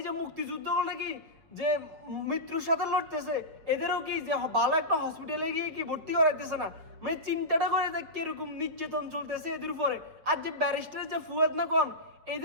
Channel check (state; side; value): late; left; 6.2 ms